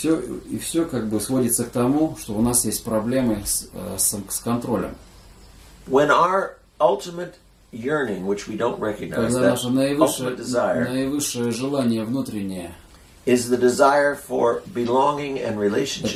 как бы сводится к тому, что у нас есть проблемы с контролем. When our ultimate yearning, which we don't recognize, Когда that наше ultimate desire наивысшее желание внутреннее, is the desire for belonging and это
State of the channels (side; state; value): both; identical; correlation 1.00